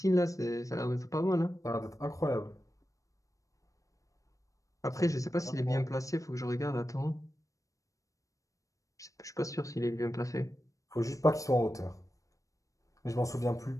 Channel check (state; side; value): late; right; 0.16 ms